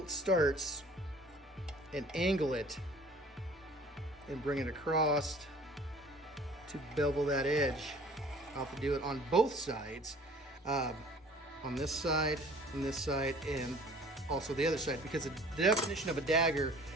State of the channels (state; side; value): normal; both; correlation 0.50